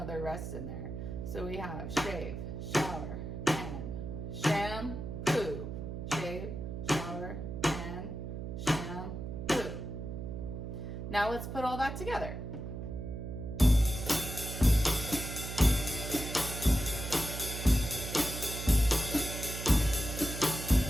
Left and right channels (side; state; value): right; noise; hum, 6 dB below the sound